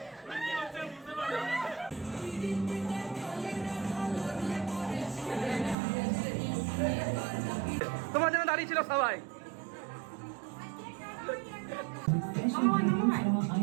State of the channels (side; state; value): left; drops out; at 5.8 s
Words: তোমার জন্য দাঁড়িয়ে ছিল সবাই।